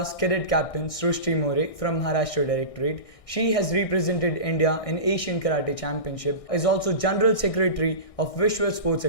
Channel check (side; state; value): right; late; 1.6 ms